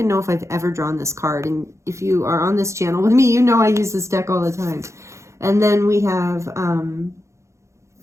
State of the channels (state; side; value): late; left; 0.14 ms